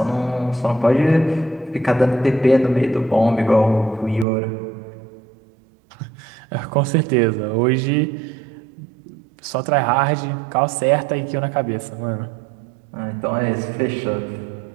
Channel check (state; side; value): drops out; left; at 4.2 s